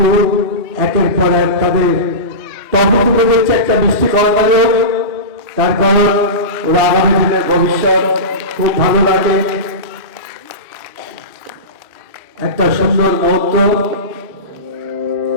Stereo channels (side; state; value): left; late; 3.2 ms